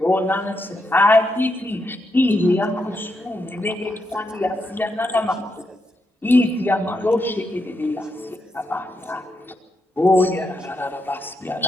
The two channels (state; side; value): normal; both; correlation 0.82